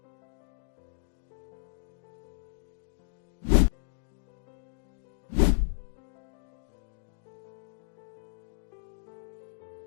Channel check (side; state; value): right; silent; digital silence